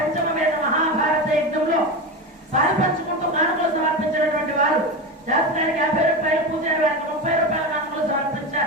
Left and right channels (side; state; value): both; normal; correlation 0.20